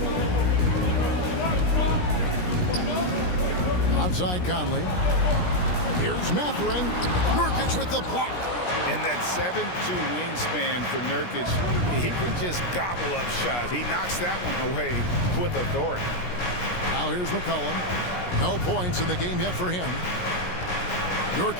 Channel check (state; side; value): late; right; 17 ms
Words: Outside Conley. Here's Mathurin. Nurkic with the block. And that 7'2" wingspan for Nurkic, he can just gobble up shots. He knocks that one away with authority. Now here's McCollum. No points in the game yet for him.